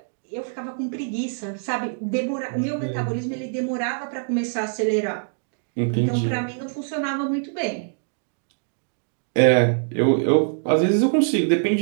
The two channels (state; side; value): silent; left; digital silence